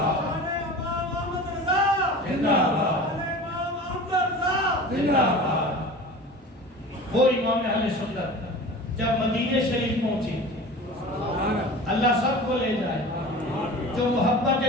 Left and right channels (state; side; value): normal; both; correlation 0.37